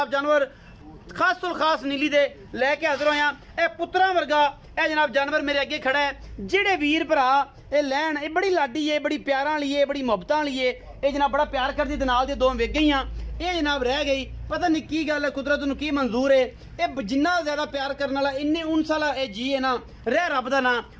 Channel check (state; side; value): identical; both; correlation 1.00